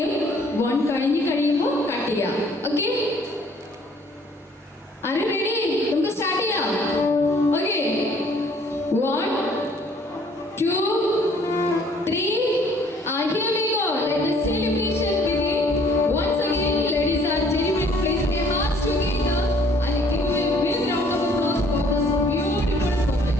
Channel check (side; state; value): both; normal; correlation 0.60